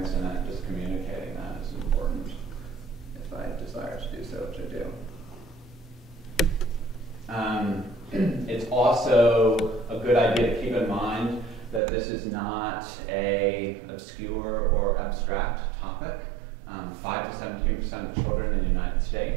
in it, just communicating that is important if I desire to do so, which I do. It's also a good idea to keep in mind that this is not an obscure or abstract topic. 5 to 17% of children in the United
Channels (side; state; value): left; drops out; at 11.8 s